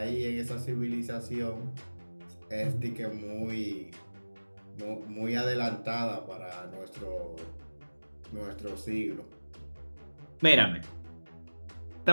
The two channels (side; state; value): both; inverted; correlation -1.00